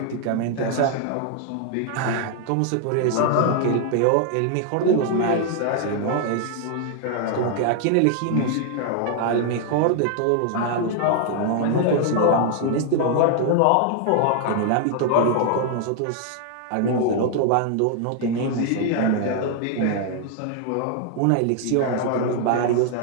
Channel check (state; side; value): different; both; correlation 0.00